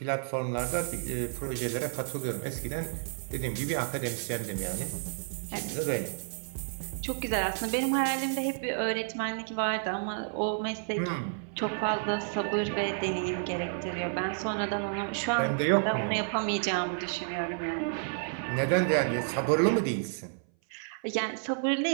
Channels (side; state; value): left; silent; 57 dB below the other